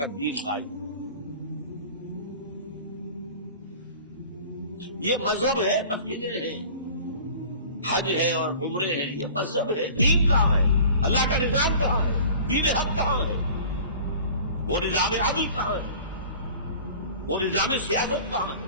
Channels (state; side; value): inverted; both; correlation -0.44